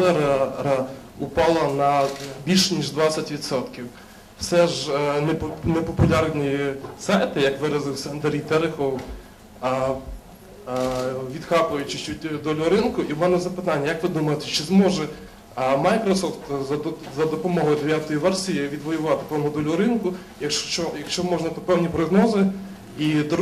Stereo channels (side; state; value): both; identical; correlation 1.00